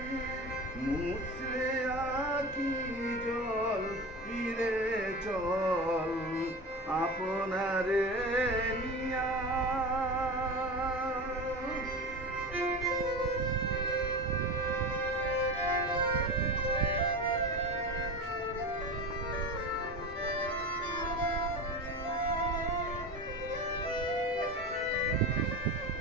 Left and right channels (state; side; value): normal; both; correlation 0.28